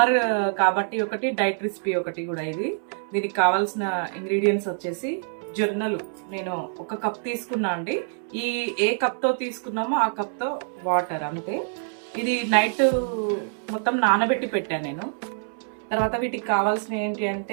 కాబట్టి ఒకటి, డైట్ రెసిపీ ఒకటి కూడా. దీనికి కావాల్సిన ఇంగ్రీడియంట్స్ వచ్చేసి జొన్నలు నేను 1 కప్ తీసుకున్నా అండి. ఏ కప్తో తీసుకున్నామో ఆ కప్తో వాటర్ అంతే. ఇది నైట్ మొత్తం నానబెట్టి పెట్టాను నేను. తర్వాత వీటికి కావాల్సిన ఏంటి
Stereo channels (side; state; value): left; silent; 61 dB below the other